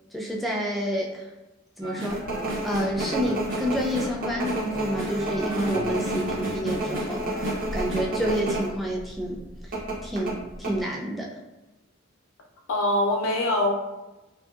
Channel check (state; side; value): normal; both; correlation 0.42